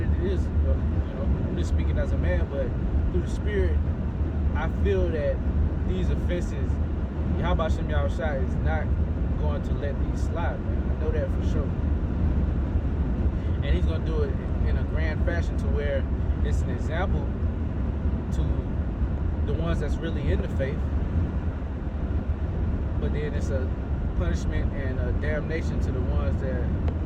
it is. You know, I'm just speaking as a man, but through the Spirit, I feel that these offenses, Yahweh Shem Yahushua is not going to let these slide, man. I know that for sure. And he's going to do it in a grand fashion to where it's an example to the ones that's really in the faith. But then it's a punishment and a damnation to the ones that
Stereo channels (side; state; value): both; identical; correlation 1.00